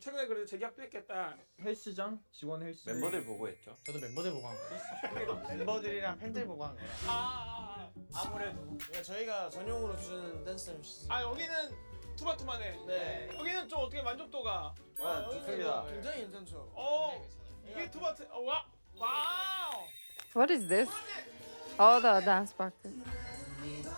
그래도 재계약도 했겠다. 헬스장 직원 헬스. 멤버들 보고 했죠. 저도 멤버들 보고 한 거예요. 멤버들이랑 팬들 보고 한 거라. 아무래도 저희가 전용으로 주는 댄스 MC. 여기는 투바투만해. 네. 여기는 좀 어떻게 만족도가? 아, 좋습니다. 굉장히 괜찮죠. 이게 투바투. 와우. What is this? Oh, the dance practice.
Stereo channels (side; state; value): both; inverted; correlation -1.00